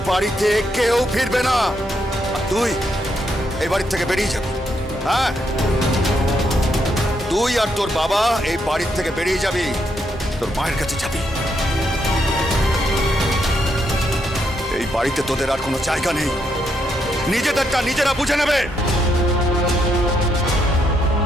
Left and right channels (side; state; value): both; normal; correlation 0.77